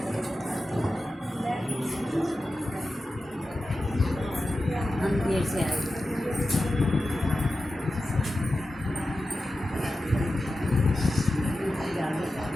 देर से आए।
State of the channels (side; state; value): both; normal; correlation 0.92